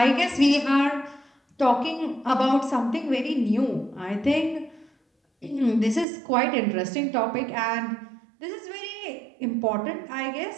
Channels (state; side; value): drops out; left; at 6.1 s